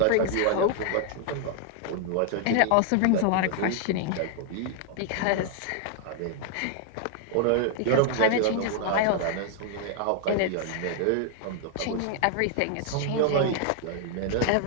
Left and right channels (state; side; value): different; both; correlation 0.00